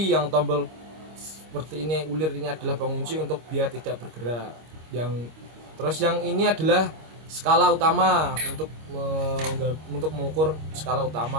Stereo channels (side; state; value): left; late; 25 ms